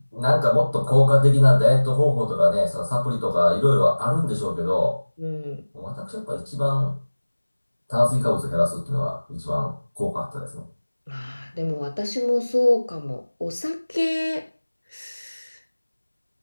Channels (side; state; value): both; inverted; correlation -1.00